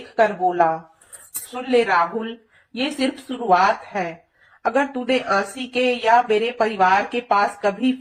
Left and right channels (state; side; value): identical; both; correlation 1.00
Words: बोला, सुन ले राहुल, ये सिर्फ शुरुआत है। अगर तूने आंसी के या मेरे परिवार के पास कभी